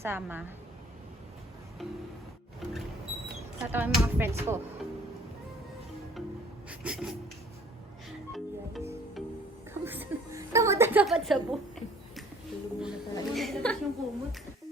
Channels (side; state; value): both; normal; correlation 0.55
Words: Tatawa yung mga friends ko. Kamusta na dapat sa buhay? Tulog muna talaga. Tapos yung kumot.